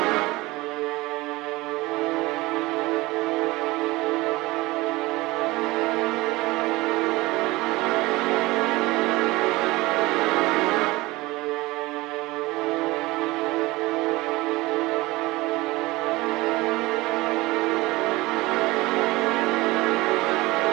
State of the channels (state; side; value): quieter; left; 20.8 dB